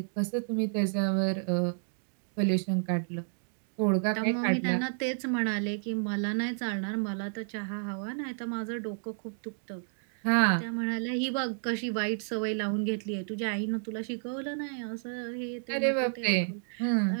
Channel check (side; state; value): left; silent; digital silence